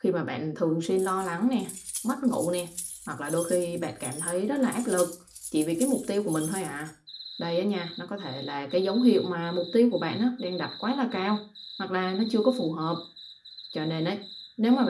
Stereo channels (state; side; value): identical; both; correlation 1.00